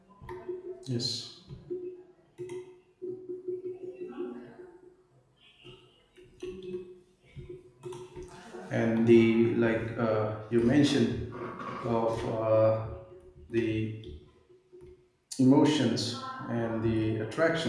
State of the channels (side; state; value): both; identical; correlation 1.00